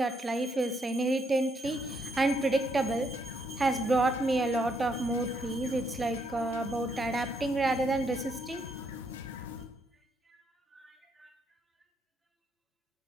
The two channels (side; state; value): both; normal; correlation 0.75